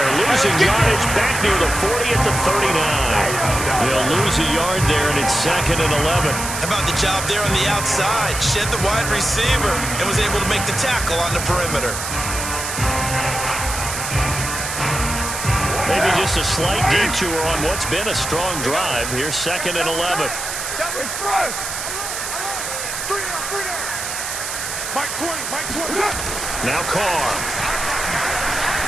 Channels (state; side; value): noise; right; hiss, 5 dB below the sound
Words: Losing yardage back near the 40 at the 39. They'll lose a yard there, and it's 2nd and 11. How about the job there on the outside? Shed the wide receiver and was able to make the tackle on the perimeter. Maybe just a slight detour on what's been a strong drive. Here's 2nd and 11. Express. 3 down. Mike 20. Now Carr.